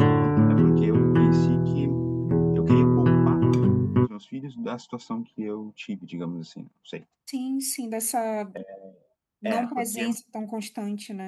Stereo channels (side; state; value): both; identical; correlation 1.00